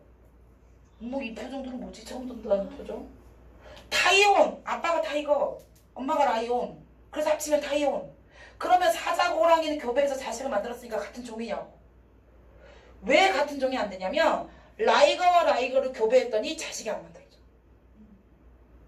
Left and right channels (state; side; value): identical; both; correlation 1.00